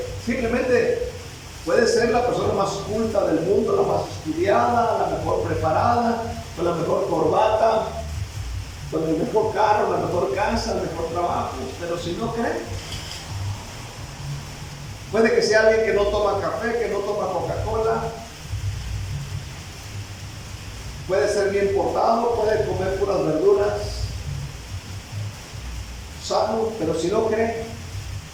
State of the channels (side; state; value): both; identical; correlation 1.00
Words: Simplemente puede ser la persona más culta del mundo, la más estudiada, la mejor preparada, con la mejor corbata, con el mejor carro, la mejor casa, el mejor trabajo, pero si no cree, puede que sea alguien que no toma café, que no toma Coca-Cola, puede ser bien portado, puede comer puras verduras, sano, pero si no cree,